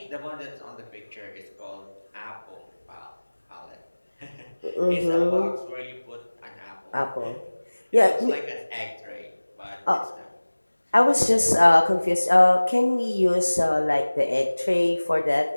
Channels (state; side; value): inverted; both; correlation -1.00